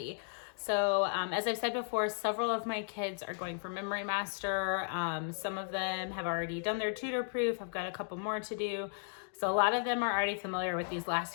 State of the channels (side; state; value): right; silent; digital silence